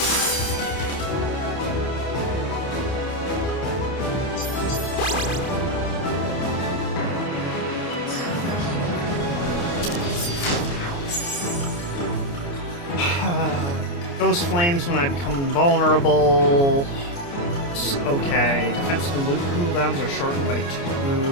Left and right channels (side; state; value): right; late; 29 ms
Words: Ghost flames when I become invulnerable. Okay, defensive and loot cooldowns are shortened by 2.